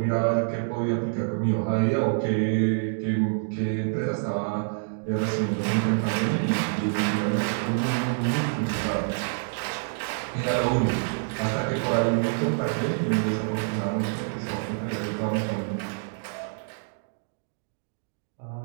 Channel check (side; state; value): left; silent; digital silence